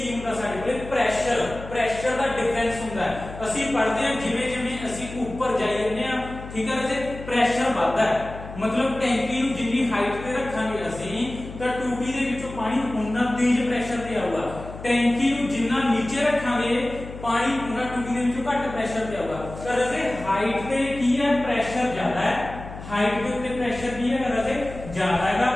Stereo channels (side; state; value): left; noise; hum, 13 dB below the sound